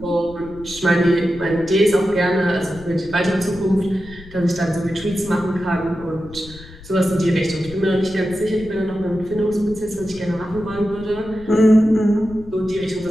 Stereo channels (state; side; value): noise; left; rumble, 18 dB below the sound